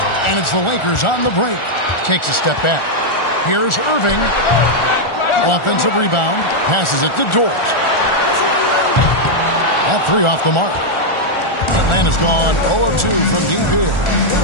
And it's the Lakers on the break. Takes a step back. Here's Irving. Offensive rebound. Passes it to Dort. That 3 off the mark. Atlanta's gone 0 of 2 from deep here.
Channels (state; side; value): late; right; 1.4 ms